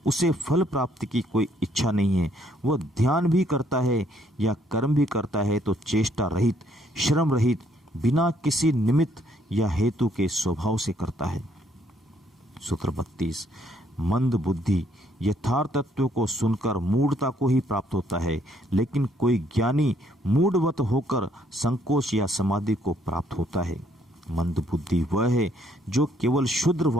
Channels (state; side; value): normal; both; correlation 0.68